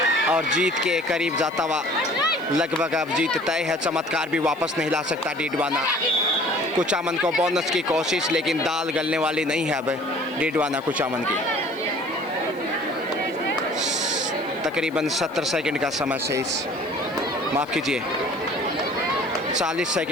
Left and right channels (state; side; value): noise; right; hiss, 26 dB below the sound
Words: और जीत के करीब जाता हुआ लगभग अब जीत तय है। चमत्कार भी वापस नहीं ला सकता डीडवाना कुचामन को। बोनस की कोशिश, लेकिन दाल गलने वाली नहीं है अब डीडवाना कुचामन की। तकरीबन 70 सेकंड का समय शेष, माफ़ कीजिए 40